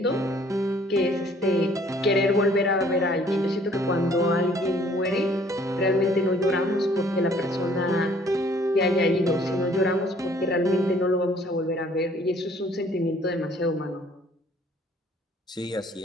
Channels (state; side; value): normal; both; correlation 0.59